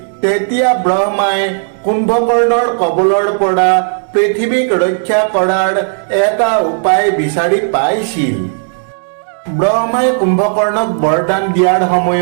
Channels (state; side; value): silent; left; digital silence